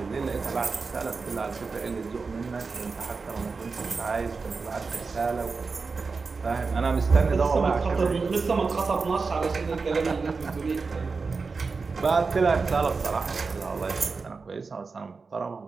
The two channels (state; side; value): quieter; left; 4.5 dB